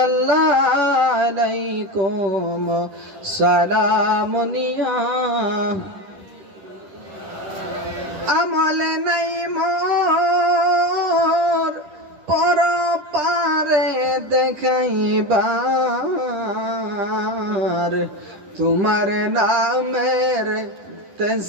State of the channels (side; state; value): left; late; 11 ms